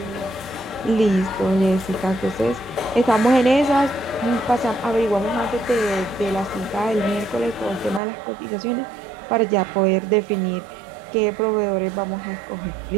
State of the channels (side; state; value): left; drops out; at 8.0 s